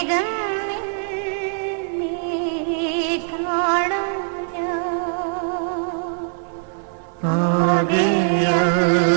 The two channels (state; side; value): silent; left; 55 dB below the other